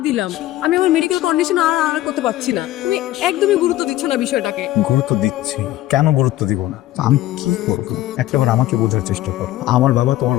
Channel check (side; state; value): right; quieter; 15.0 dB